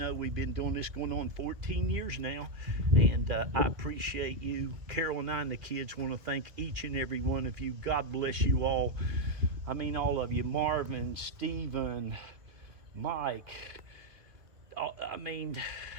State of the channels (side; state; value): left; late; 2.4 ms